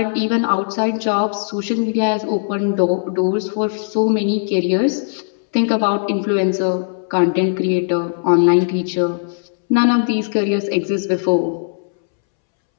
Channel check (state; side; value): silent; right; 66 dB below the other